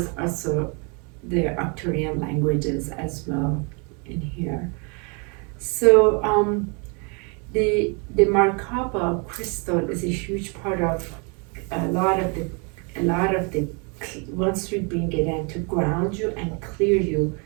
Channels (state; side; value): quieter; left; 34.1 dB